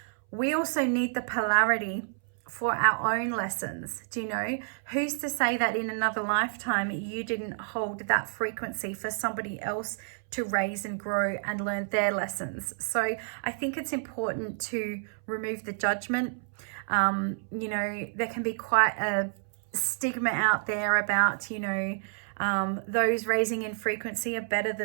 we also need the polarity for our own lessons. Who's to say that in another lifetime you didn't hold that frequency for somebody else to raise and grow and learn their lessons? So I think it's important to remove the judgment. There can be quite a stigma out there about, those raising in frequency are better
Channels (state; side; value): silent; left; 58 dB below the other